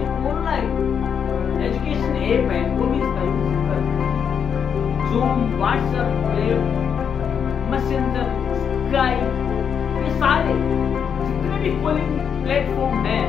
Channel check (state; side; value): quieter; right; 7.4 dB